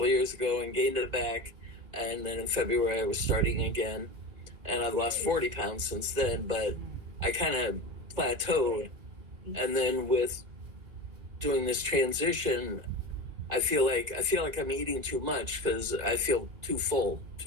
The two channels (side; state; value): left; late; 2.4 ms